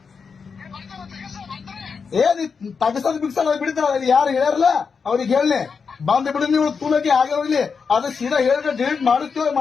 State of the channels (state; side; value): quieter; right; 5.6 dB